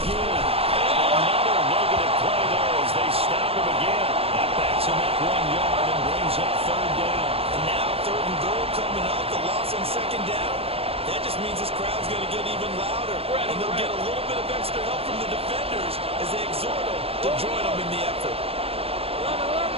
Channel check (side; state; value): left; late; 0.28 ms